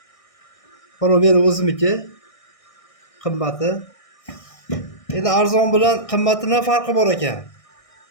Mana meni o'zimniki qimmati. Endi arzon bilan qimmatining farqi bor ekan.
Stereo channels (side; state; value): right; late; 1.6 ms